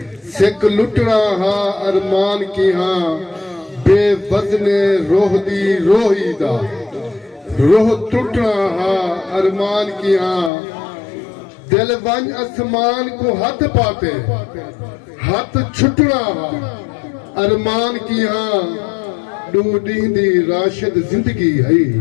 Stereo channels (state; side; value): drops out; right; at 10.5 s